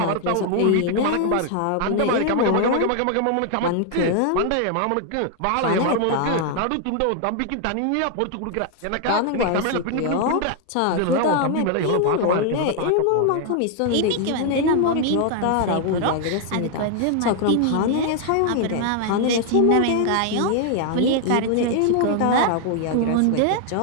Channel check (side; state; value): both; different; correlation 0.00